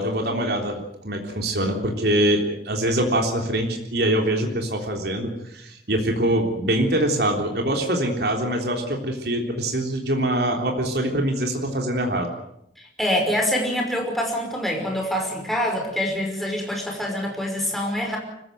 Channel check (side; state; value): both; normal; correlation 0.36